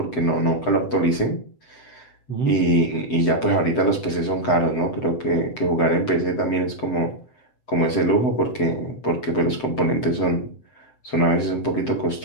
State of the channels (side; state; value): right; late; 7.8 ms